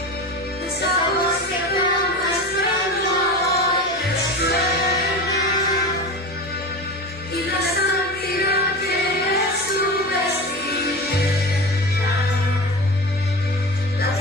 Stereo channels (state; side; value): normal; both; correlation 0.28